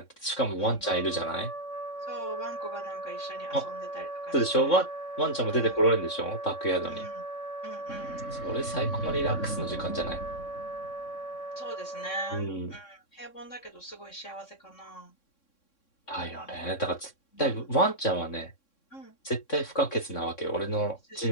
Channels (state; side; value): late; right; 3.6 ms